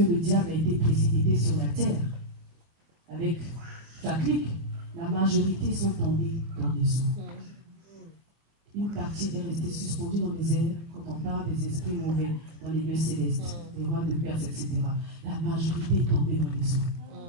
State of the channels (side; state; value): left; late; 24 ms